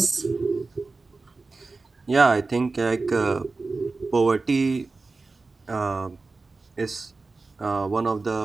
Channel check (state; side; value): quieter; left; 3.8 dB